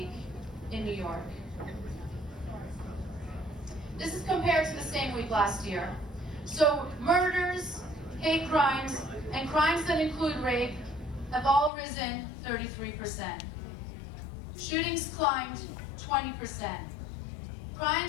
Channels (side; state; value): right; drops out; at 11.7 s